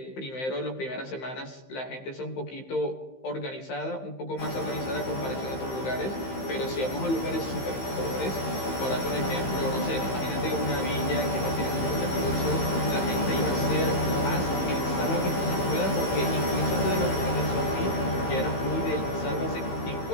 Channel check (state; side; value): late; right; 15 ms